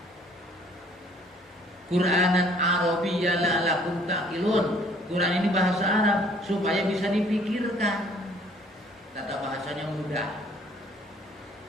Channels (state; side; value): normal; both; correlation 0.58